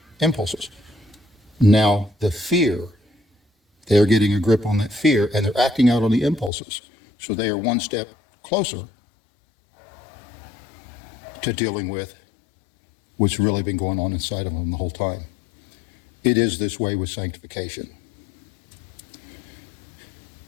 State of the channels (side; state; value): right; drops out; at 6.5 s